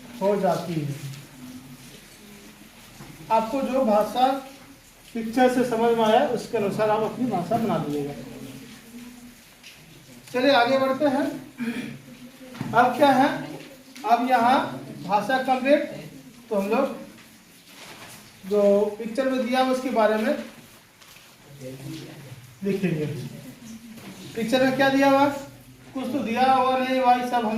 हो जाती है। आपको जो भाषा पिक्चर से समझ में आया उसके अनुसार आप अपनी भाषा बना दीजिएगा। चलिए आगे बढ़ते हैं। अब क्या है, अब यहाँ भाषा कंप्लीट, तो हम लोग जो पिक्चर में दिया उसके बारे में लिखेंगे। पिक्चर में क्या दिया हुआ, कुछ तो दिया हुआ नहीं भाई, सब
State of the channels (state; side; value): identical; both; correlation 1.00